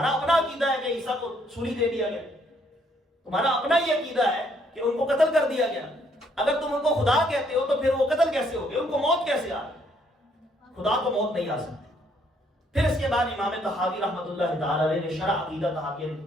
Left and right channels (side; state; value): both; normal; correlation 0.68